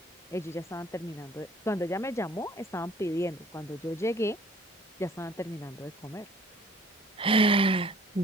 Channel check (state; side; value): normal; both; correlation 0.54